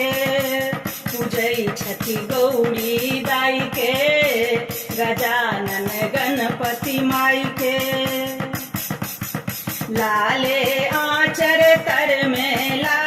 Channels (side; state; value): both; identical; correlation 1.00